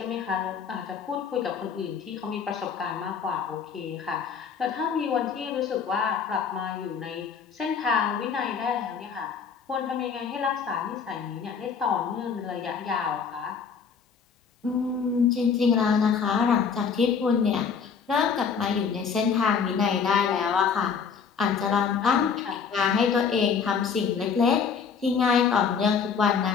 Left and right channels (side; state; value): right; quieter; 6.3 dB